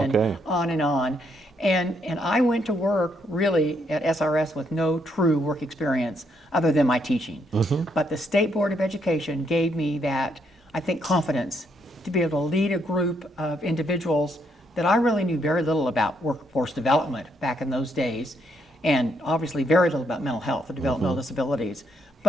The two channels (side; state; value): both; normal; correlation 0.74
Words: on and on. And I went to work really at SRS with no true work experience other than my teaching. But the State Board of Education gave me that, I think, confidence to be able to lead a group of individuals that I really knew very little about workforce development back in those days, and obviously very little about mental health or developmental disabilities.